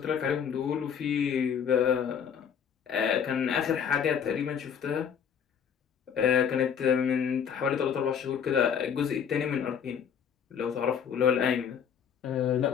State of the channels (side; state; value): right; quieter; 7.7 dB